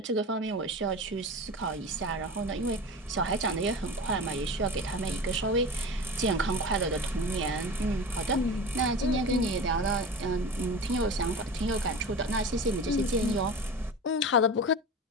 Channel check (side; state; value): both; normal; correlation 0.31